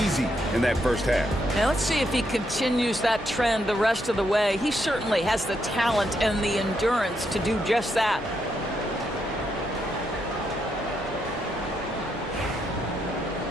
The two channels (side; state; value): both; normal; correlation 0.79